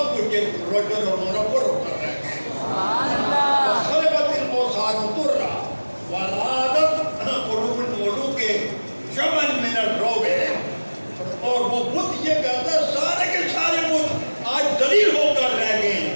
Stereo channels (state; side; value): inverted; both; correlation -1.00